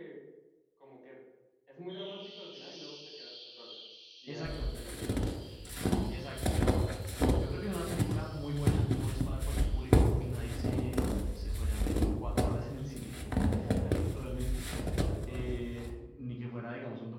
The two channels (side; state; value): both; identical; correlation 1.00